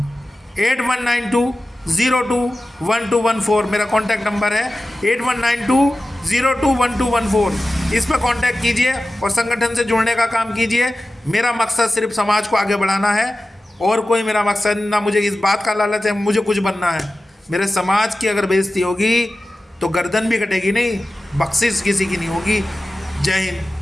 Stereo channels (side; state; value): both; normal; correlation 0.95